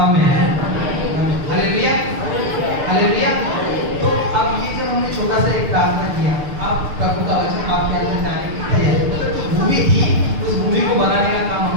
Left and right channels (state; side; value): late; left; 6.7 ms